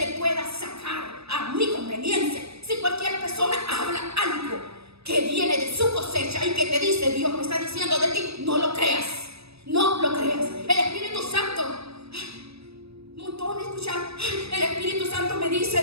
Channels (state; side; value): late; left; 0.78 ms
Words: pueda sacar a mi conveniencia. Si cualquier persona habla algo que viene de su cosecha y que te dice, Dios me está diciendo de ti, no lo creas. No lo creas. El Espíritu Santo, montón escuchar, el Espíritu Santo me dice